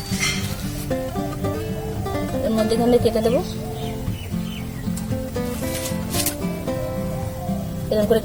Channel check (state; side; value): identical; both; correlation 1.00